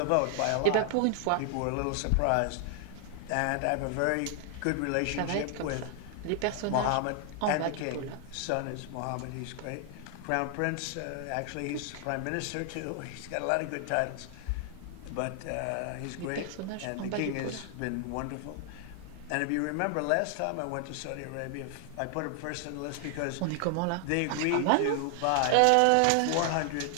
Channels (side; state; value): both; different; correlation 0.00